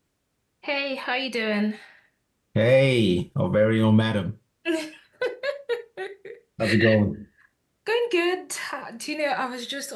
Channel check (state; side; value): identical; both; correlation 1.00